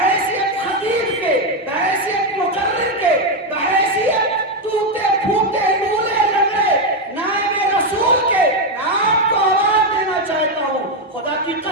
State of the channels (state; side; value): normal; both; correlation 0.05